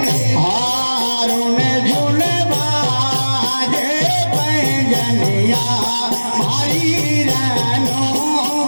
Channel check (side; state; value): both; inverted; correlation -1.00